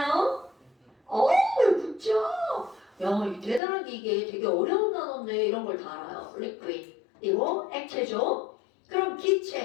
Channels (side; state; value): right; drops out; at 3.6 s